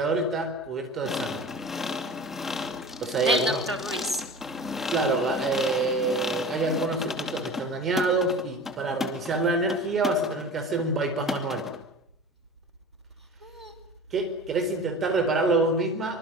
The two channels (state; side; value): normal; both; correlation 0.36